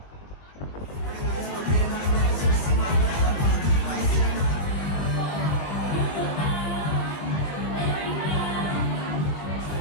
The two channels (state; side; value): late; right; 21 ms